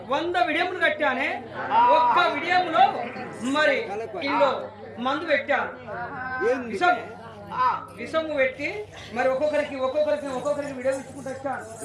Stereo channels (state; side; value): identical; both; correlation 1.00